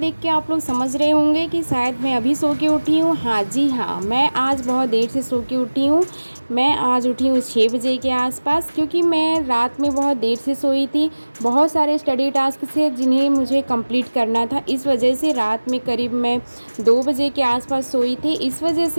के आप लोग समझ रहे होंगे कि शायद मैं अभी सो के उठी हूँ। हाँ जी हाँ, मैं आज बहुत देर से सो के उठी हूँ। मैं आज उठी हूँ 6 बजे के आसपास, क्योंकि मैं रात में बहुत देर से सोई थी। बहुत सारे स्टडी टास्क थे जिन्हें मुझे कंप्लीट करना था, इस वजह से रात में करीब मैं 2 बजे के आसपास सोई थी। इस वजह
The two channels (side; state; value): both; inverted; correlation -1.00